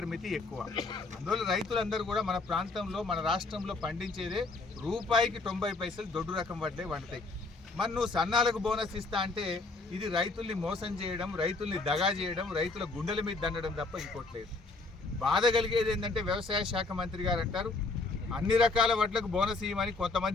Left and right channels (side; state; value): right; quieter; 3.6 dB